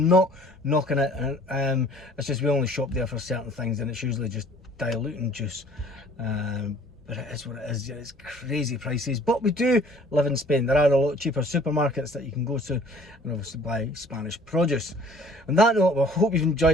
not knocking it, and it's just we only shop there for certain things and it's usually just diluting juice. But it is what it is. It's crazy prices, but we do live in Spain. There are a lot cheaper supermarkets that you can go to and obviously buy Spanish produce. On that note, I hope you've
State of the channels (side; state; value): both; normal; correlation 0.53